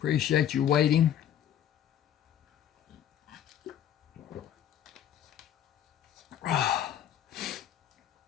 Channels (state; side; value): quieter; right; 10.4 dB